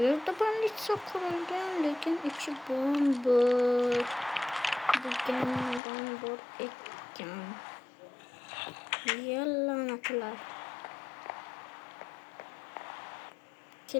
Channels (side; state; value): right; drops out; at 5.8 s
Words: banditsiya qurilgan, lekin ichi bo'm-bo'sh. Degandan bor ekan. Yallanatlar.